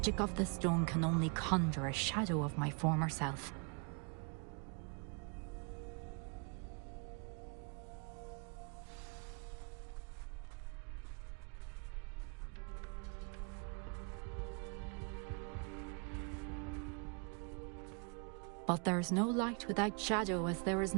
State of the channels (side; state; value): left; quieter; 37.4 dB